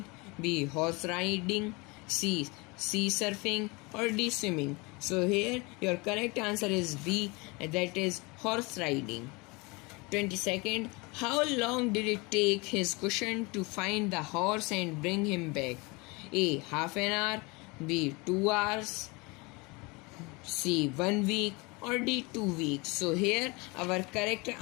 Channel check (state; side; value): quieter; right; 26.7 dB